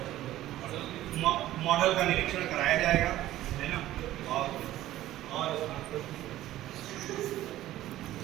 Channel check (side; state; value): left; quieter; 14.5 dB